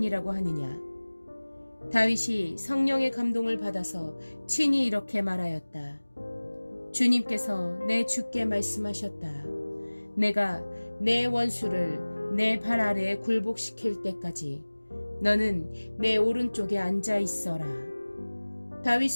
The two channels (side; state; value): both; inverted; correlation -1.00